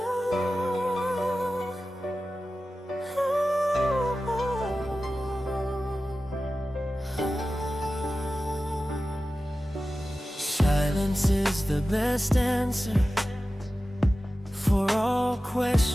is the best answer for all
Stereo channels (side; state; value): both; normal; correlation 0.94